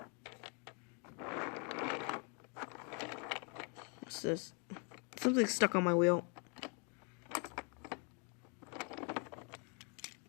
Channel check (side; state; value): right; quieter; 36.9 dB